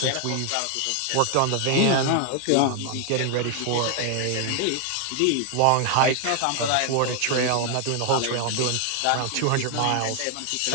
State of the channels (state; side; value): different; both; correlation 0.00